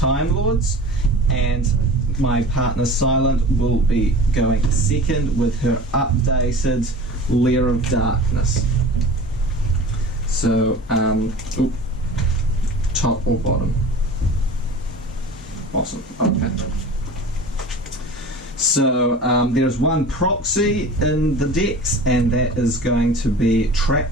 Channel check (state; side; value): normal; both; correlation 0.38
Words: Lords, and my partner Silent will be going second with her updated Lair of Darkness. So, top or bottom? Bottom, okay. So, there's one proxy in the decks, and that is going to be Trap